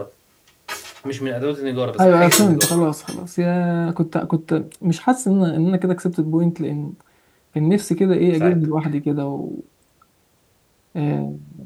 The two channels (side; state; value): both; identical; correlation 1.00